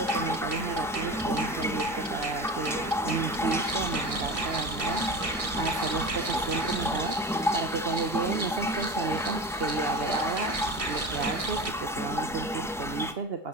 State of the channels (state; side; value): normal; both; correlation 0.31